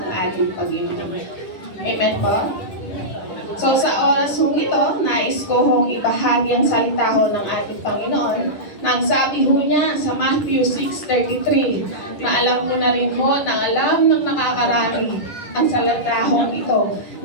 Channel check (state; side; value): late; right; 10 ms